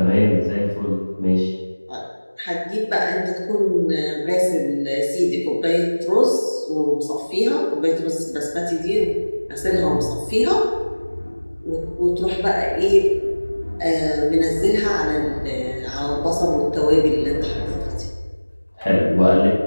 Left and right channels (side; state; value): both; inverted; correlation -1.00